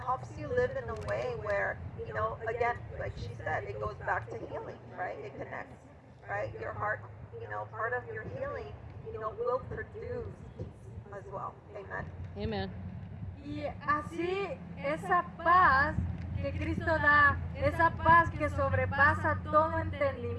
you live in a way where, again, like she said, it goes back to healing, right? It connects, right? Your heart, part of your healing, will produce peace as well. Amen. Amen. Y así esa paz que Cristo da, esa paz que sobrepasa todo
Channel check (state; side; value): identical; both; correlation 1.00